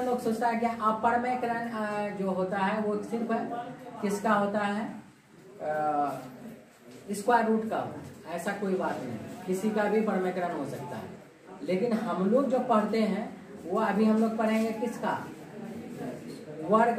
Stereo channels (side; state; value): both; identical; correlation 1.00